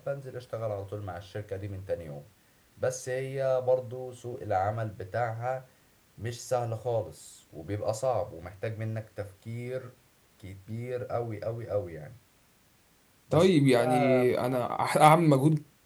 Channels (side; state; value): both; identical; correlation 1.00